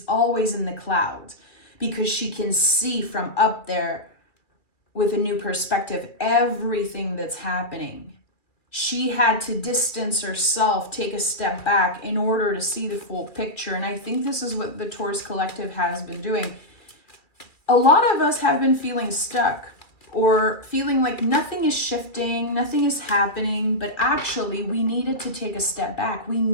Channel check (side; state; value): right; late; 2.3 ms